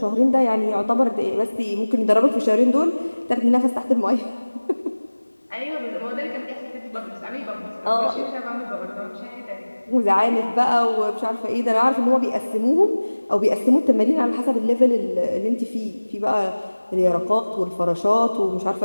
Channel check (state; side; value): inverted; both; correlation -1.00